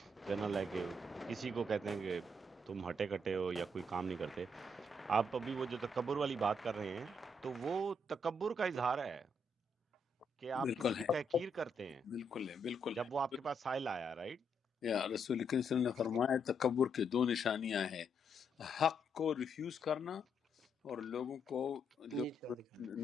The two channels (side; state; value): both; normal; correlation 0.76